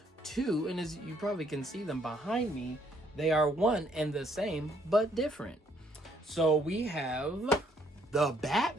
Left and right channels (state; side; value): normal; both; correlation 0.68